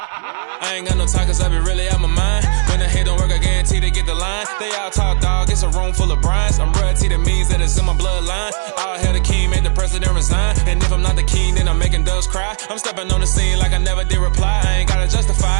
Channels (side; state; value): left; silent; digital silence